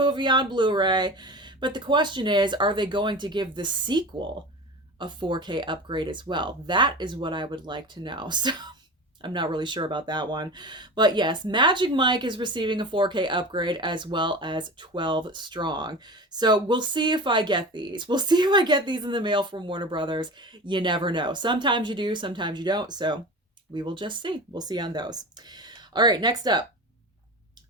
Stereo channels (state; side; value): normal; both; correlation 0.32